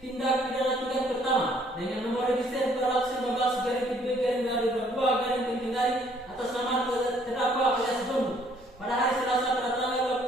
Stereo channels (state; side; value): normal; both; correlation 0.63